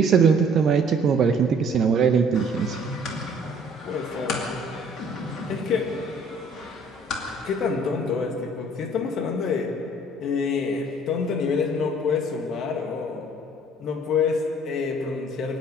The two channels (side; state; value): both; normal; correlation 0.56